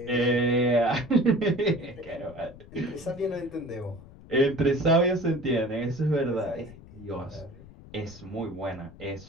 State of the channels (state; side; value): noise; left; rumble, 19 dB below the sound